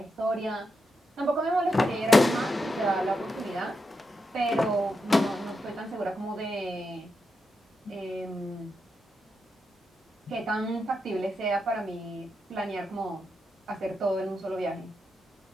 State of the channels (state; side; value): normal; both; correlation 0.85